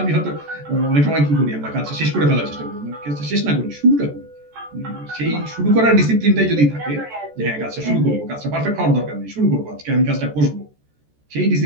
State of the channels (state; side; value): late; left; 14 ms